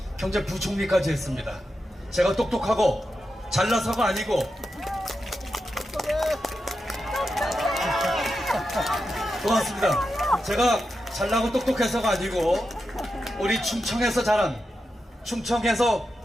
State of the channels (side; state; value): both; normal; correlation 0.88